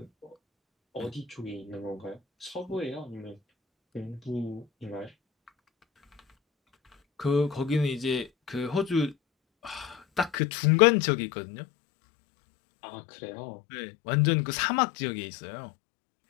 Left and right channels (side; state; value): right; drops out; at 10.4 s